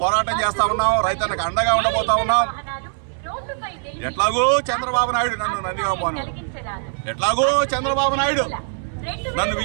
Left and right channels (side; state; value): left; silent; digital silence